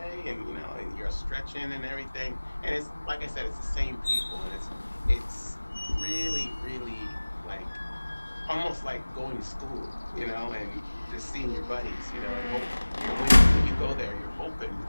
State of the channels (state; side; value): inverted; both; correlation -1.00